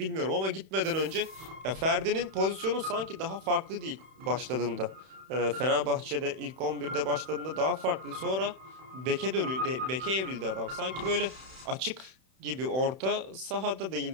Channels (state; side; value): late; left; 31 ms